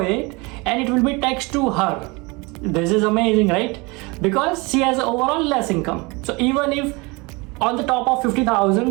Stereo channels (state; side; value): quieter; left; 26.4 dB